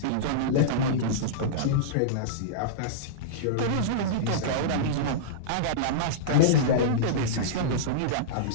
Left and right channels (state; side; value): different; both; correlation -0.04